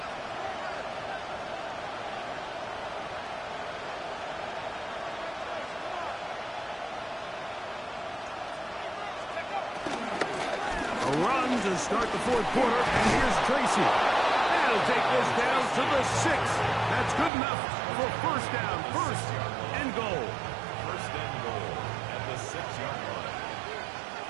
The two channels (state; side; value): drops out; left; at 17.3 s